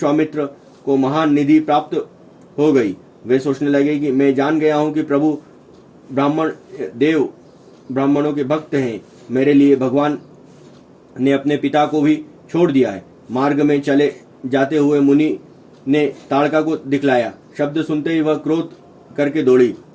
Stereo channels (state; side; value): identical; both; correlation 1.00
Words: को महान निधि प्राप्त हो गई। वे सोचने लगे कि मैं जान गया हूं कि प्रभु ब्राह्मणों के भक्त हैं। मेरे लिए भगवान ने अपने पिता को भी छोड़ दिया है। मार्ग में चले जाते हुए मुनि ने ताड़का को दिखलाया। शब्द सुनते ही वह क्रोध करके दौड़ी।